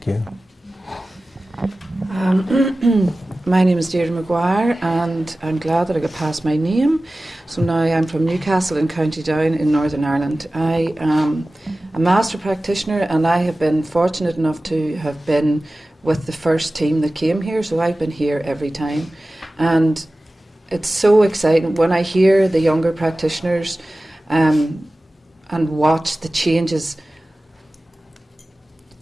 you. My name is Deirdre McGuire, and I'm glad that I got past my name. So now I'm from Newcastle in County Down in Northern Ireland. I am a master practitioner, and I have been fortunate enough to have been with the first team that came here, so I've been here every time. And it's so exciting when I hear the younger practitioners and watch the changes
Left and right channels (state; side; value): normal; both; correlation 0.96